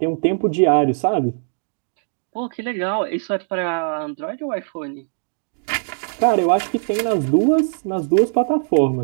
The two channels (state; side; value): silent; left; digital silence